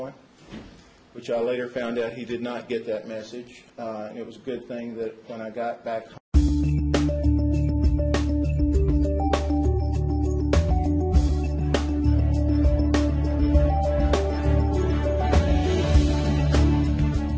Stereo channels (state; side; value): identical; both; correlation 1.00